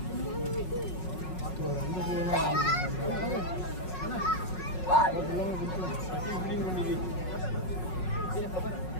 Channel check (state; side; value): late; right; 5.4 ms